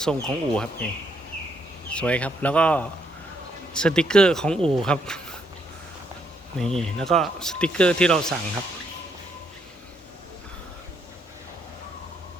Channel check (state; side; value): normal; both; correlation 0.74